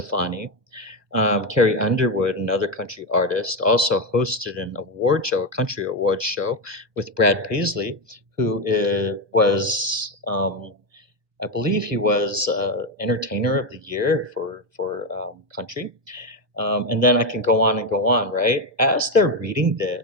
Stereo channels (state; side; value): late; left; 1.2 ms